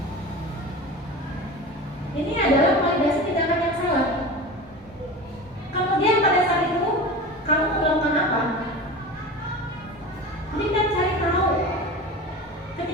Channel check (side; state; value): both; normal; correlation 0.31